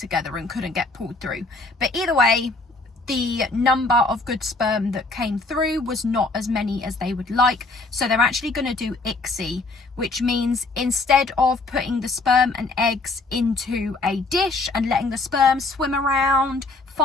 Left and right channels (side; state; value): right; quieter; 3.4 dB